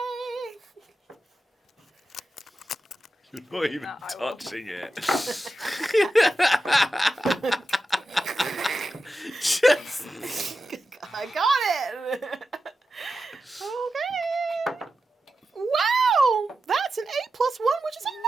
You're not even I will. touching it. Just... I got it. Okay. Wow, that's an 8+1, which is a 9.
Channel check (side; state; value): both; normal; correlation 0.91